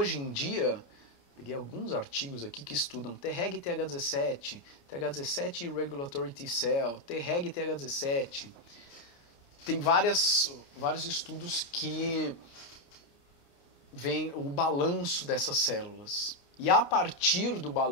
em dia, peguei alguns artigos aqui que estudam Treg e TH17, TH17 e Regulatory T-cell, Treg e TH17. Tem vários estudos que veem o balanço dessas células. E a partir do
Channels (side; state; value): right; late; 29 ms